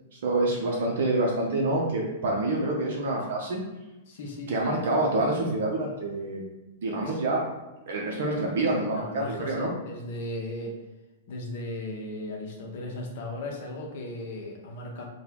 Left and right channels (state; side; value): inverted; both; correlation -0.31